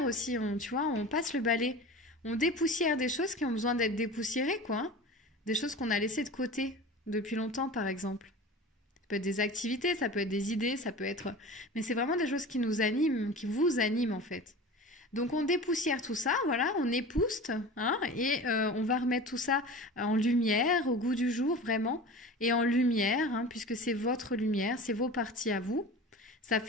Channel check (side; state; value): both; normal; correlation 0.35